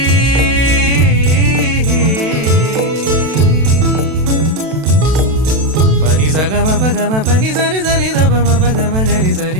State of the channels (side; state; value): left; late; 32 ms